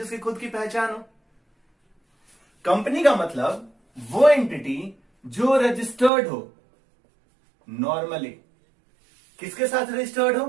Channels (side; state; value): left; drops out; at 6.1 s